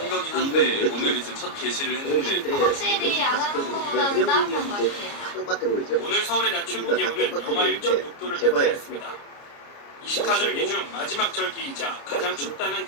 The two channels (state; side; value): late; right; 29 ms